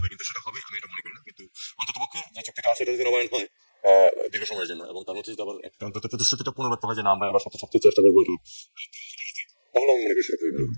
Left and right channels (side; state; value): both; inverted; correlation -1.00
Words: কিন্তু সেটা হবে আমি এটা মনে করি না। কিন্তু অন্ততপক্ষে যে চুক্তিটা আছে এটা যদি নবায়ন হয় দীর্ঘ সময়ের জন্য, এবং তার মধ্যে যদি আবার একটা অন্তত প্রতিশ্রুতিটা পুনর্ব্যক্ত হয় যে না আমরা আবার সবচেয়ে চেষ্টা করবো, তাহলে আমি মনে করি সেটা খুবই ভালো।